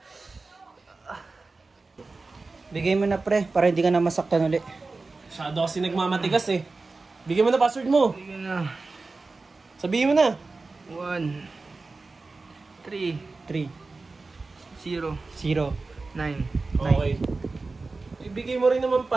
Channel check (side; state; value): left; quieter; 3.7 dB